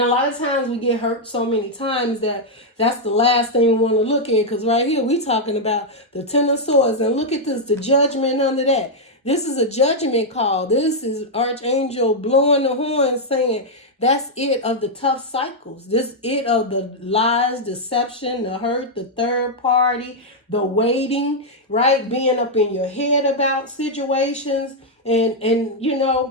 lot of times we get hurt so many times that that's the last thing we want to look at. Because right here we talking about the Ten of Swords. And look at this, the Judgment under that. This is a judgment call. This is Archangel blowing the horn saying, that's it of the tough cycles. This it of the lies, deception, the hurt, the third party, the waiting, right? Being up in your head about situations. And you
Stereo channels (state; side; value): normal; both; correlation -0.03